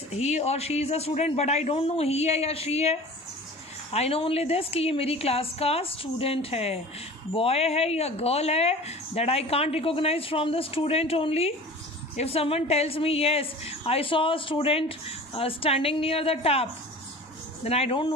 he or she is a student, but I don't know he है या she है. I know only this कि ये मेरी class का student है. Boy है या girl है, that I can't recognize from the student only. If someone tells me yes, I saw a student standing near the tap, then I don't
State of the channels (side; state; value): both; normal; correlation 0.40